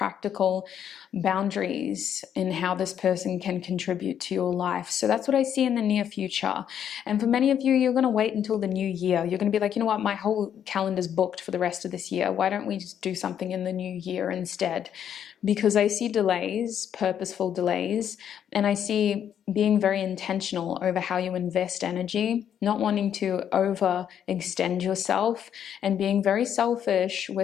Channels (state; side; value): quieter; right; 9.2 dB